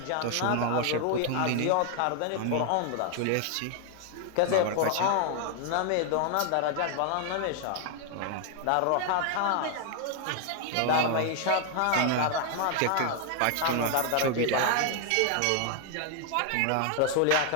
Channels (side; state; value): both; different; correlation 0.00